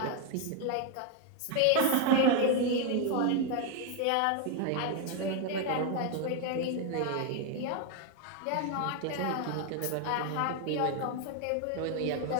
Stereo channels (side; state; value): both; different; correlation 0.01